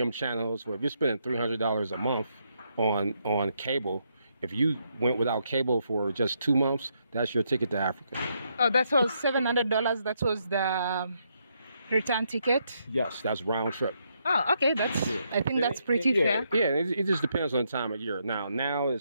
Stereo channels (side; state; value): both; inverted; correlation -0.77